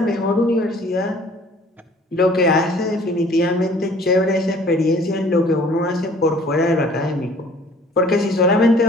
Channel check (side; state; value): both; normal; correlation 0.53